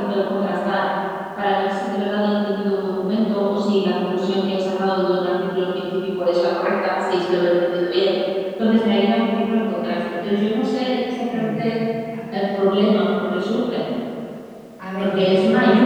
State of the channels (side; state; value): both; identical; correlation 1.00